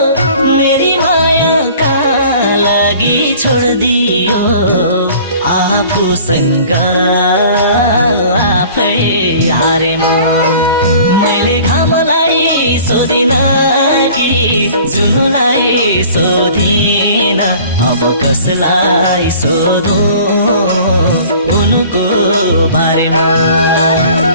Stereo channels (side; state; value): both; inverted; correlation -0.48